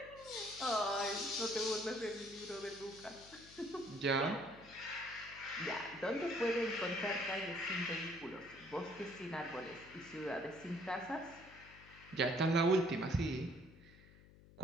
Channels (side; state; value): left; noise; hum, 22 dB below the sound